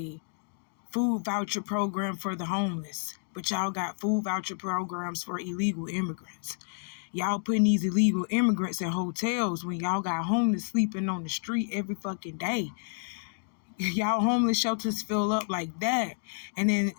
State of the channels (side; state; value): right; silent; digital silence